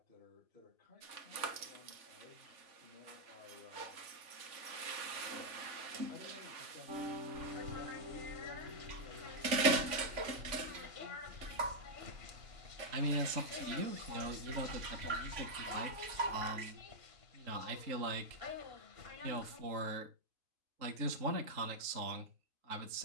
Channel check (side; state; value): left; late; 3.5 ms